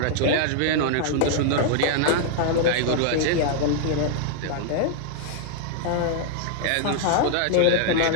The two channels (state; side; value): different; both; correlation -0.01